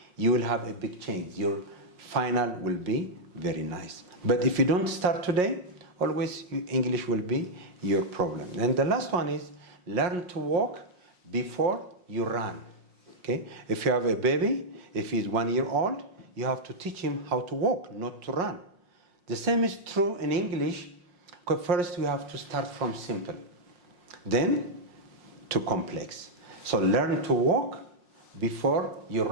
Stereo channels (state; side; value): late; left; 5.5 ms